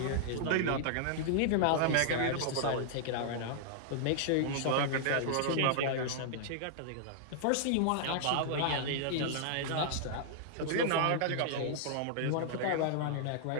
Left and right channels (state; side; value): different; both; correlation -0.01